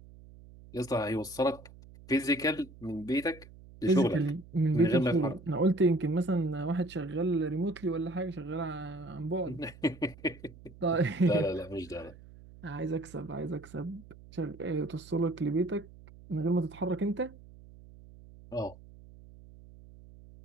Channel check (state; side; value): noise; right; hum, 20 dB below the sound